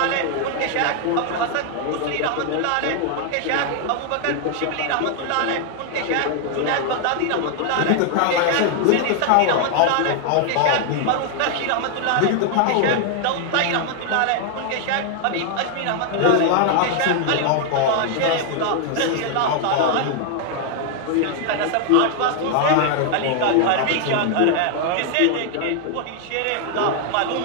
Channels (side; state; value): both; different; correlation 0.00